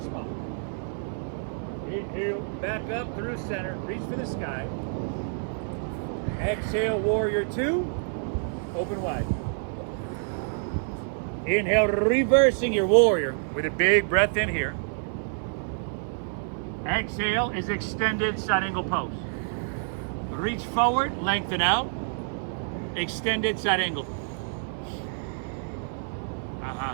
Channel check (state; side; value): silent; left; 59 dB below the other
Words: spine. Inhale, back up through center. Reach for the sky. Exhale, warrior 2. Open wide. Inhale, reversing your warrior with a big breath in here. Exhale is extended side angle pose. Reach forward, lengthen out. Extended side angle.